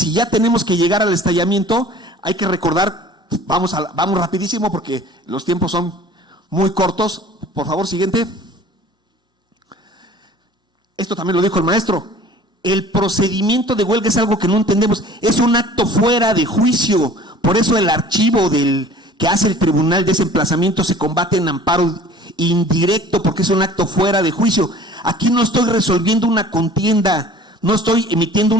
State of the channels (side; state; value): both; normal; correlation 0.48